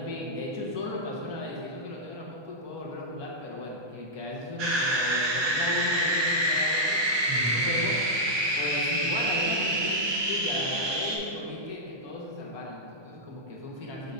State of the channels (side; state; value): left; late; 1.2 ms